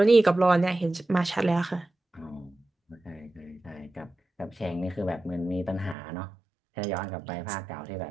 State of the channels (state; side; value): drops out; left; at 6.0 s